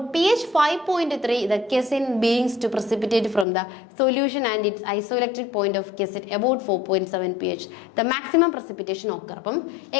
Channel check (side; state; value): right; drops out; at 3.5 s